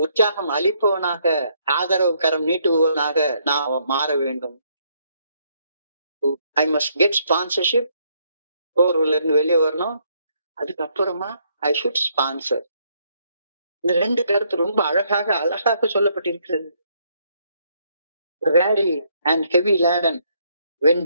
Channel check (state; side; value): inverted; both; correlation -0.71